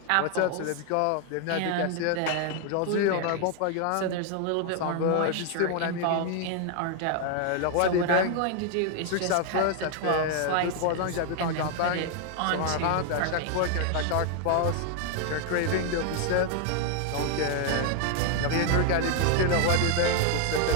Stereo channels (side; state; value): both; different; correlation 0.00